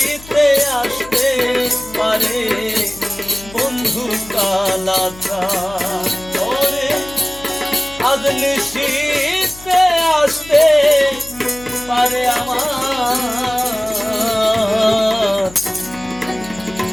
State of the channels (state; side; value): noise; left; hum, 19 dB below the sound